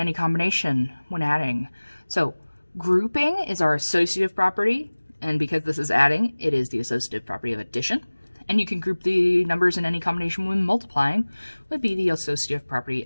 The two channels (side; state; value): both; inverted; correlation -1.00